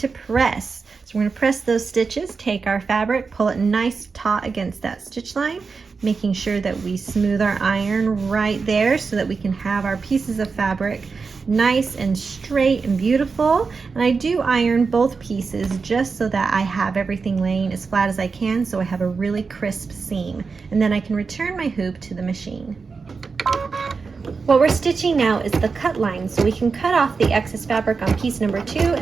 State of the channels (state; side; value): quieter; left; 4.8 dB